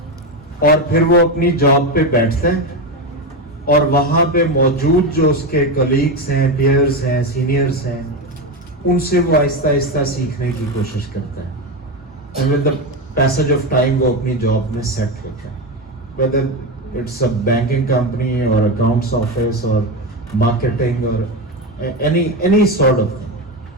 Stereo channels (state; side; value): normal; both; correlation 0.15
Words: اور پھر وہ اپنی جاب پہ بیٹھتا ہے اور وہاں پہ موجود جو اس کے کلیگس ہیں, پیئرس ہیں, سینئرس ہیں, ان سے وہ آہستہ آہستہ سیکھنے کی کوشش کرتا ہے. And with the passage of time وہ اپنی جاب میں سیٹ ہوتا ہے, whether it's a banking company or accounts office or marketing or any sort of thing.